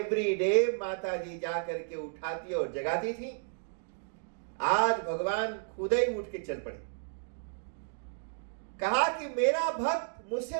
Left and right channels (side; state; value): left; silent; digital silence